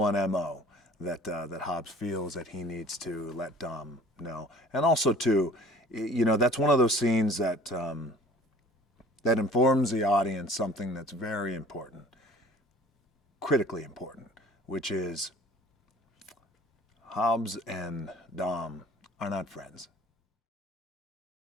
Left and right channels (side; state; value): both; normal; correlation 0.49